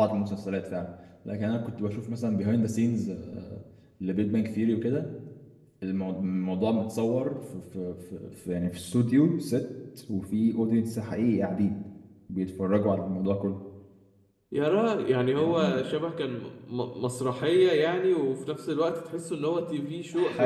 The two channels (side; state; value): both; identical; correlation 1.00